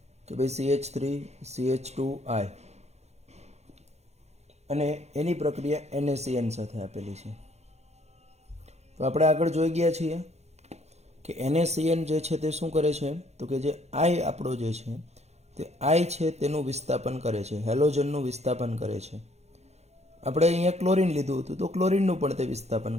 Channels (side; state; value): left; late; 0.32 ms